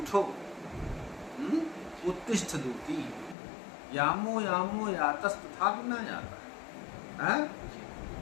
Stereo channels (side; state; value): right; drops out; at 3.4 s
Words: उत्तिष्ठ दूती, यामो यामो यातस्तथापि न यातः।